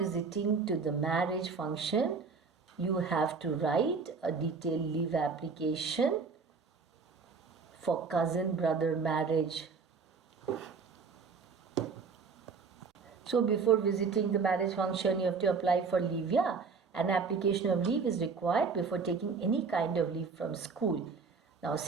to the marriage function, you have to write a detailed leave application for cousin brother marriage. So before visiting the marriage function, you have to apply for leave. Yeah, an application of leave is required before taking any kind of leave from school. Now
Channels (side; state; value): left; quieter; 5.1 dB